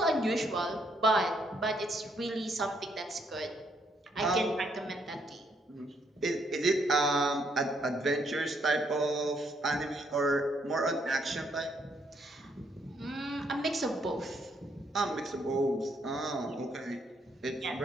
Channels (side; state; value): both; normal; correlation 0.72